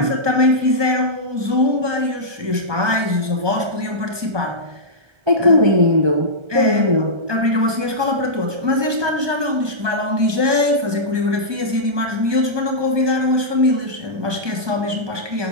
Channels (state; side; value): late; left; 1.2 ms